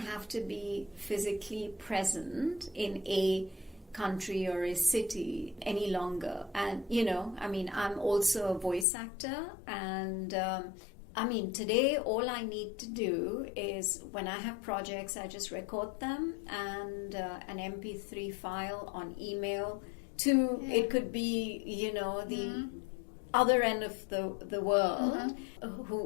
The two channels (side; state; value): right; drops out; at 8.8 s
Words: to be physically present in a country or a city any longer. And, I'm also a voice actor. And, today all I need to do is when I have projects, I just record them and an MP3 file on email to, it could be, the other end of the world